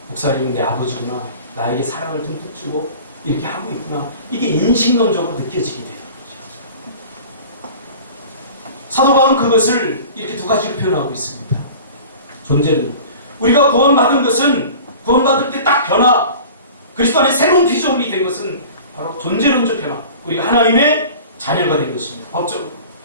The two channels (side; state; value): both; inverted; correlation -0.41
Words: 목사님은 내 아버지구나. 나에게 사랑을 듬뿍 주고 이렇게 하고 있구나. 이게 인식론적으로 느껴지게 되는 거죠. 사도 바울은 그것을 이렇게 두 가지로 표현하고 있습니다. 존재는 우리가 구원받은 것은 구원받을 때 딱 변화, 그리스도 안에 새로운 피조물이 된 것은 바로 존재론적 변화. 우리가 하나님의 자녀가 된 것입니다. 법적으로.